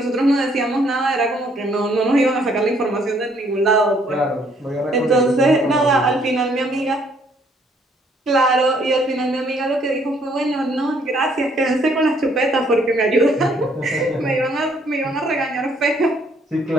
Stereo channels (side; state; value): both; normal; correlation 0.66